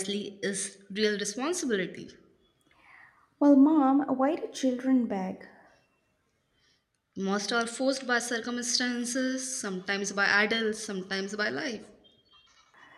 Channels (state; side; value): identical; both; correlation 1.00